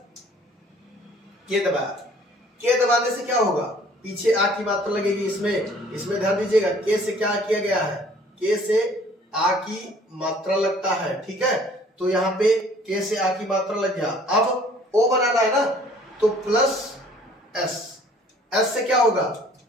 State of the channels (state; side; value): normal; both; correlation 0.55